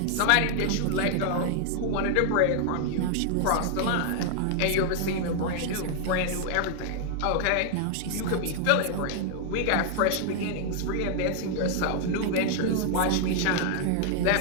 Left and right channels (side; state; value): both; different; correlation 0.00